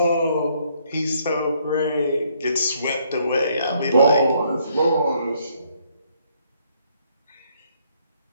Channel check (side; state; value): both; inverted; correlation -0.68